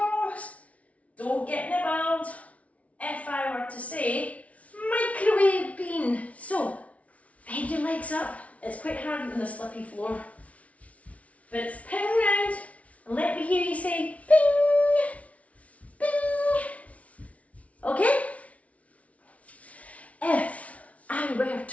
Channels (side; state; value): right; late; 0.066 ms